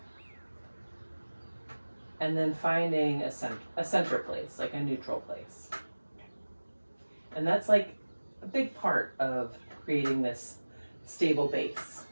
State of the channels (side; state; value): both; inverted; correlation -1.00